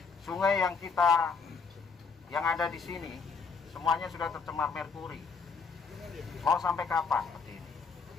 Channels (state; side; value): quieter; right; 5.1 dB